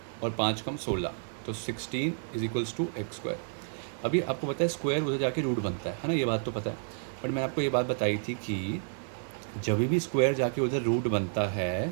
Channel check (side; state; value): left; silent; 57 dB below the other